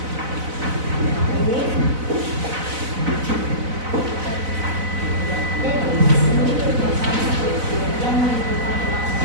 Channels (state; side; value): late; left; 4.0 ms